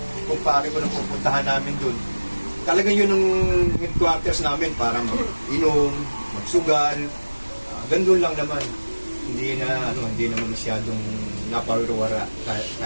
kumpare ko na pupuntahan namin dun. Talagang yun ang headquarters namin para mag-inom, magsugal, gandun lang naman. Hindi naman masyadong naparuwara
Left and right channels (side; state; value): both; inverted; correlation -1.00